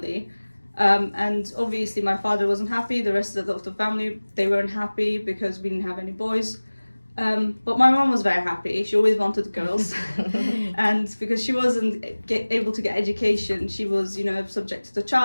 and obviously my father wasn't happy. The rest of the family, they weren't happy because we didn't have any boys. But my mom was very happy. She always wanted girls, and because she wasn't able to get education, she was subjected to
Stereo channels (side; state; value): both; inverted; correlation -1.00